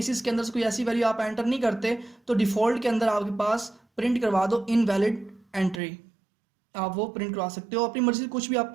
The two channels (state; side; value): drops out; left; at 5.8 s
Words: के अंदर से कोई ऐसी वैल्यू आप एंटर नहीं करते, तो डिफ़ॉल्ट के अंदर आपके पास प्रिंट करवा दो इनवैलिड एंट्री, आप वो प्रिंट करवा सकते हो। अपनी मर्जी से कुछ भी आप